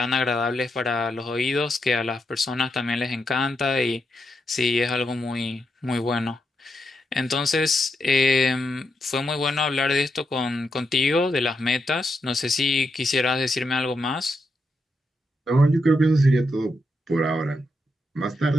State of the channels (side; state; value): both; normal; correlation 0.83